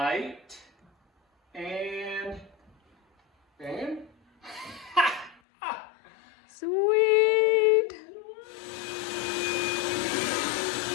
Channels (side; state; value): right; drops out; at 5.4 s